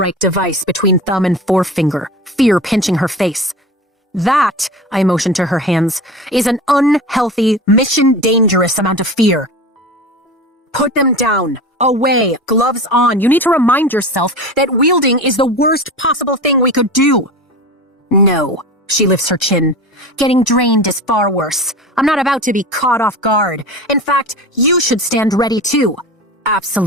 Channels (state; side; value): normal; both; correlation 0.31